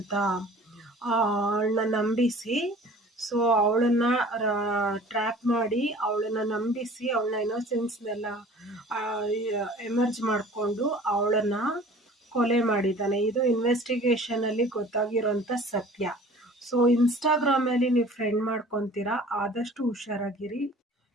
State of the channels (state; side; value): normal; both; correlation 0.47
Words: ಅವಳನ್ನ ನಂಬಿಸಿ, ಸೊ ಅವಳನ್ನ ಟ್ರ್ಯಾಪ್ ಮಾಡಿ ಅವಳನ್ನ ನಂಬಿಸಿ ಅವಳನ್ನ ಇನ್ನೋಸೆನ್ಸ್ನೆಲ್ಲ ಎಮರ್ಜ್ ಮಾಡಿಕೊಂಡು ಅವಳನ್ನ ಕೊಲೆ ಮಾಡಿದ್ದಾನೆ. ಇದು ಇನ್ವೆಸ್ಟಿಗೇಷನಲ್ಲಿ ಗೊತ್ತಾಗಿರೋಂಥ ಸತ್ಯ. ಸೊ ಇನ್ಸ್ಟಾಗ್ರಾಮಲ್ಲಿ ನೀವು ಫ್ರೆಂಡ್ ಮಾಡ್ಕೊತೀರಾ, ಆದಷ್ಟು ಹುಷಾರಾಗಿರಿ.